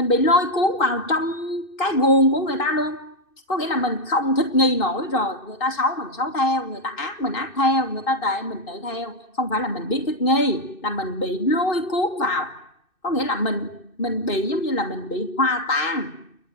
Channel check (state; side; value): late; right; 2.6 ms